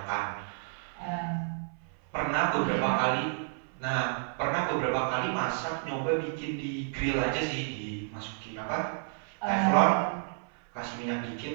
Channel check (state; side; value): silent; left; 57 dB below the other